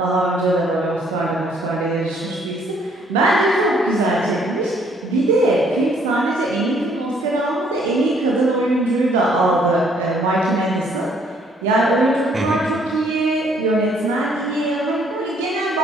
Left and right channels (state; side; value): normal; both; correlation 0.64